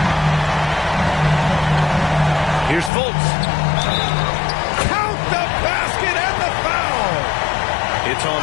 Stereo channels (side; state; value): right; drops out; at 2.9 s